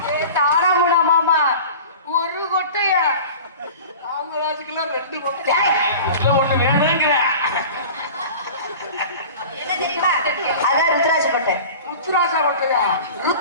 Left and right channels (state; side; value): inverted; both; correlation -0.38